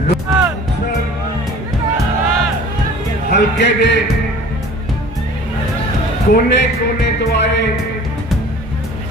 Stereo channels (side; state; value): both; normal; correlation 0.46